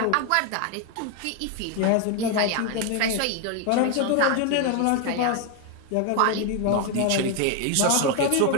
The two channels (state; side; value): different; both; correlation 0.01